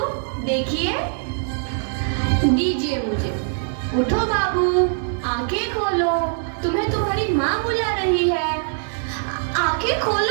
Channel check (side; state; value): left; silent; 64 dB below the other